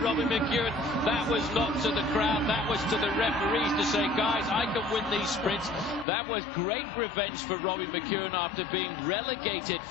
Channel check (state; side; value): drops out; right; at 6.1 s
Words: McEwen. That was not to the crowd. That was to the referees to say, guys, I can win these sprints. That was great revenge for Robbie McEwen after being relegated